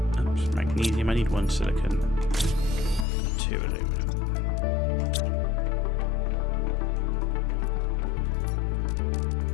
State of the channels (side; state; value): right; drops out; at 3.1 s